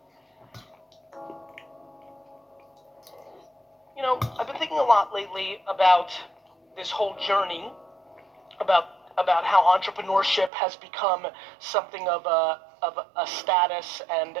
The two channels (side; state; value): left; drops out; at 10.5 s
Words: I've been thinking a lot lately about this whole journey, about how entrepreneurship has become something of a status and